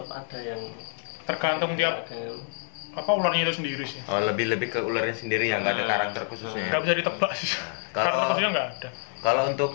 ada yang tergantung tiap apa ularnya itu sendiri sih. Oh, lebih ke ularnya sendiri yang nggak ada karakter khususnya. Nggak bisa ditebak sih. Karakter khususnya nggak ada. Kalau untuk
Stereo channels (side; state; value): right; silent; 60 dB below the other